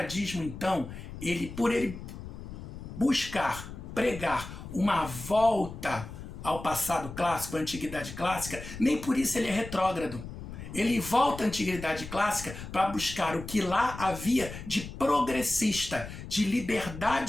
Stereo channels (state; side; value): noise; left; rumble, 11 dB below the sound